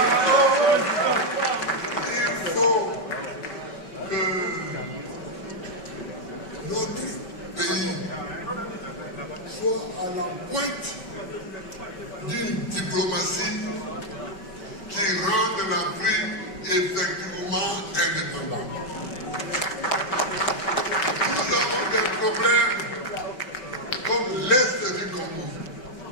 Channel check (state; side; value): late; right; 5.3 ms